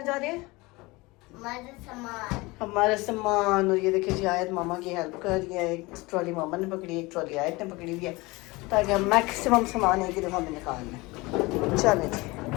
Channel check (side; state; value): right; quieter; 23.1 dB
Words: जा रहे हैं? हमारा सामान। और ये देखिए जी, आयत मामा की हेल्प कर रही है। एक ट्रॉली मामा ने पकड़ी, एक ट्रॉली आयत ने पकड़ी हुई है, ताकि हम मैक्सिमम सामान एक ही दफ़ा में निकाल लें। चले जी,